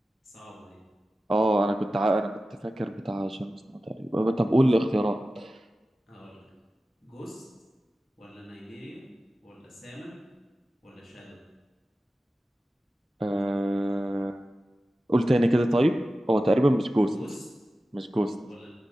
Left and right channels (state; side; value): normal; both; correlation 0.94